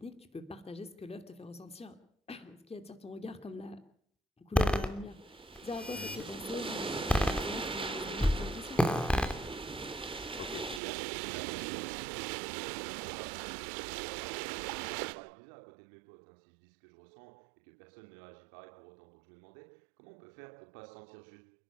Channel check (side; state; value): left; drops out; at 10.8 s